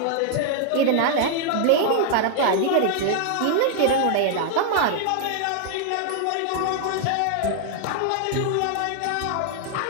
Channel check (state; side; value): different; both; correlation 0.00